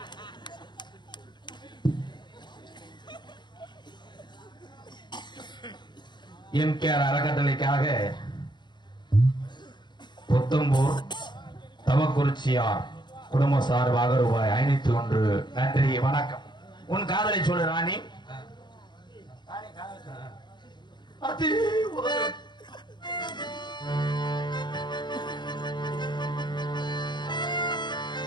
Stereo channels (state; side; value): late; right; 0.22 ms